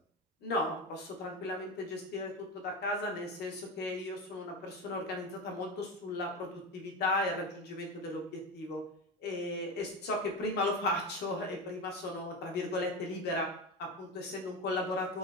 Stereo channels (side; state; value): both; normal; correlation 0.21